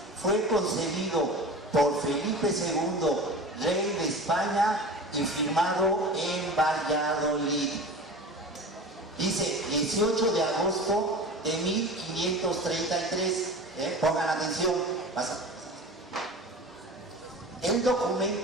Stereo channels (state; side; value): normal; both; correlation 0.35